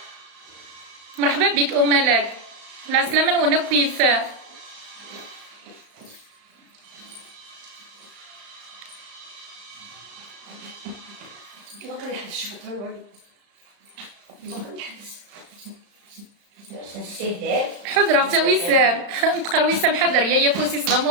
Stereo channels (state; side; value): late; left; 35 ms